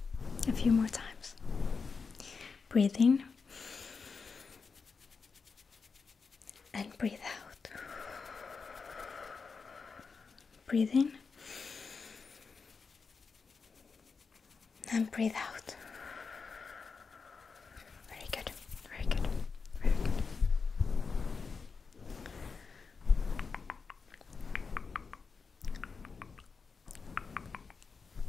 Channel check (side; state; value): right; quieter; 5.0 dB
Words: A few more times. Breathe in and breathe out. Breathe in and breathe out. Very good, very good, very good.